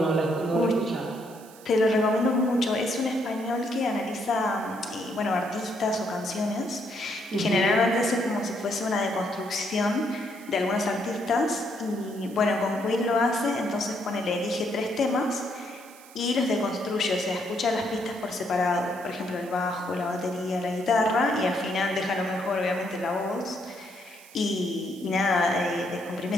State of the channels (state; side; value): noise; right; hiss, 22 dB below the sound